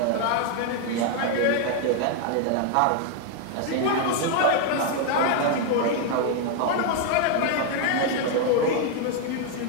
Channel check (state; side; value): different; both; correlation 0.00